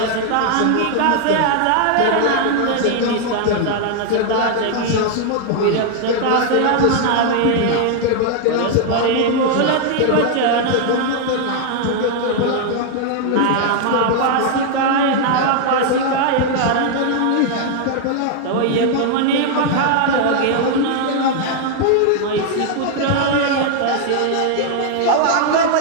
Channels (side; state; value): both; different; correlation 0.00